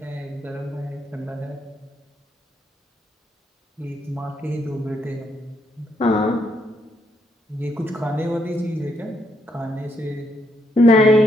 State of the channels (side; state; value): both; normal; correlation 0.76